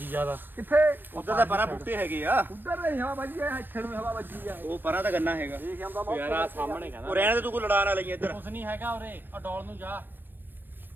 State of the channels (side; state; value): left; late; 0.094 ms